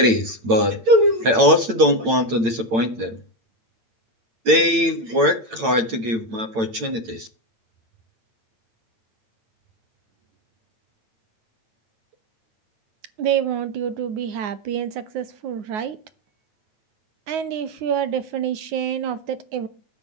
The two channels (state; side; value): late; left; 8.9 ms